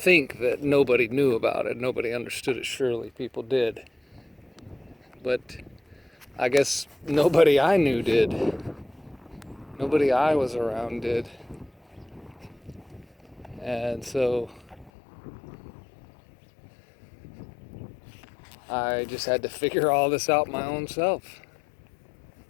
that nobody knew about it. Nobody understood it. Surely people did. But I guess nobody I knew did. Nobody I was around did. And so I just had to figure all this out my own self.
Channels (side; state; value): right; drops out; at 14.9 s